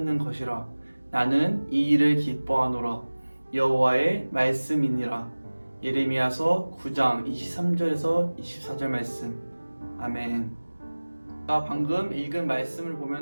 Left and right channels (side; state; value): both; inverted; correlation -1.00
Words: 것이라. 나는 이 일을 기뻐하노라. 여호와의 말씀이니라. 예레미야서 9장 23절에서 24절 말씀. 아멘. 방금 읽은 말씀을